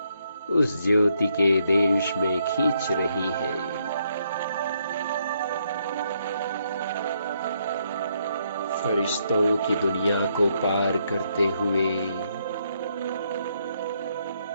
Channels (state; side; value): inverted; both; correlation -0.75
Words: उस ज्योति के देश में खींच रही है। फरिश्तों की दुनिया को पार करते हुए